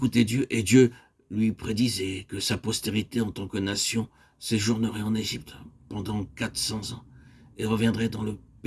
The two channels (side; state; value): both; identical; correlation 1.00